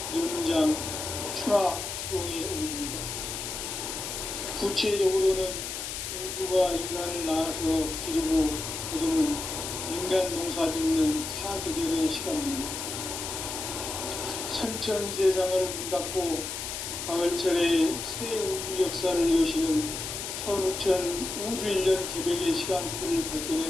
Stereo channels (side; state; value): left; noise; hiss, 5 dB below the sound